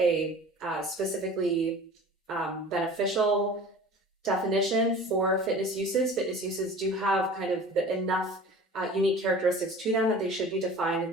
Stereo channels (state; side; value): normal; both; correlation 0.41